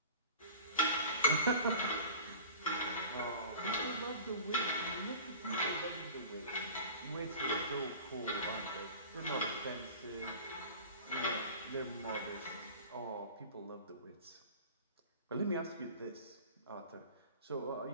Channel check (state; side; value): inverted; both; correlation -0.38